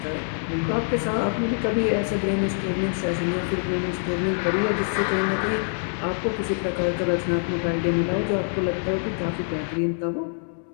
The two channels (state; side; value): silent; right; digital silence